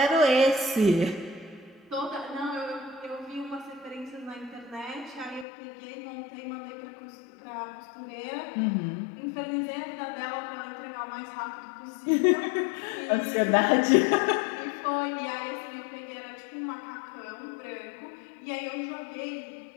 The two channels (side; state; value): right; drops out; at 5.5 s